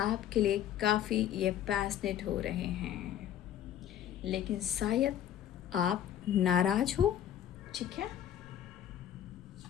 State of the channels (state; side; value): quieter; right; 10.7 dB